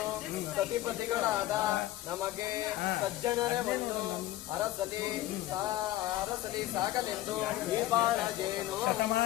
ಸತಿಪತಿಗಳಾದ ನಮಗೆ ಸಜ್ಜನರೇ ಒಂದು ಅರಸಲಿ ಸಾಗಲೆಂದು ಈ ಬಾಳಜೇನು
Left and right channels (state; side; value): quieter; right; 15.1 dB